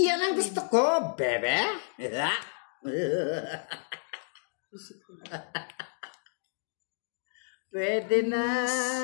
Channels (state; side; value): silent; right; digital silence